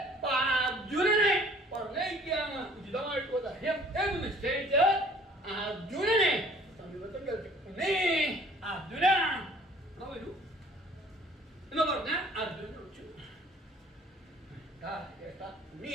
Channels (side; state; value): both; normal; correlation 0.53